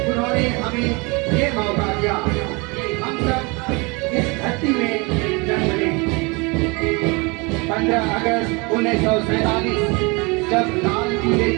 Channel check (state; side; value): quieter; left; 28.1 dB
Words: उन्होंने हमें ये मौका दिया कि हम सब इस धरती में जन्म लें। 15 अगस्त 1947 जब लाल किले